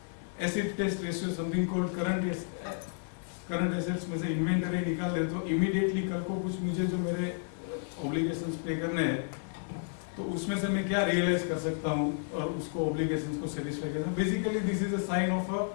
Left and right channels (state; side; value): silent; right; 57 dB below the other